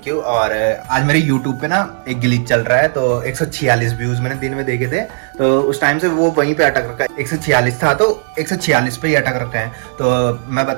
यू। और आज मेरे यूट्यूब पे ना एक ग्लिच चल रहा है, तो 146 व्यूज मैंने दिन में देखे थे, तो उस टाइम से वो वहीं पे अटक रखा है। 146 था तो 146 पे ही अटक रखा है। तो मैं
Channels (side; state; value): left; silent; digital silence